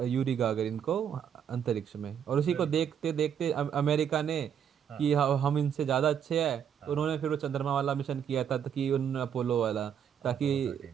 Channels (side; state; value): left; quieter; 8.5 dB